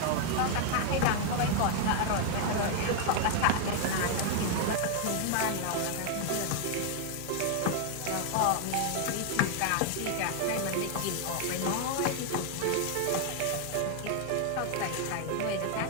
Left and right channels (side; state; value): both; different; correlation 0.00